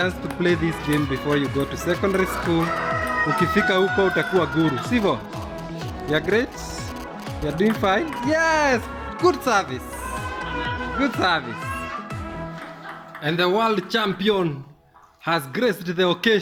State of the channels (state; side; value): identical; both; correlation 1.00